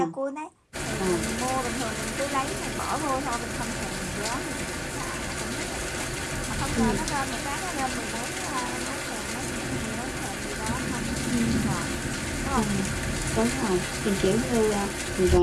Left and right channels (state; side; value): identical; both; correlation 1.00